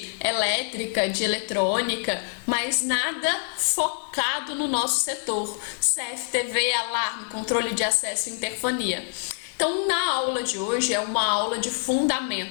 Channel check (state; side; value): silent; right; digital silence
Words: elétrica, de eletrônica, mas nada focado no nosso setor. CFTV, alarme, controle de acesso e interfonia. Então, na aula de hoje é uma aula de